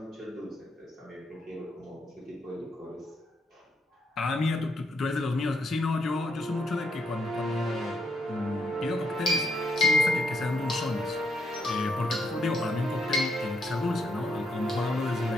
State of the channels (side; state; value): both; normal; correlation 0.76